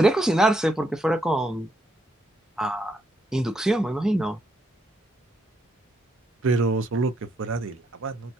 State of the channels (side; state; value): both; normal; correlation 0.76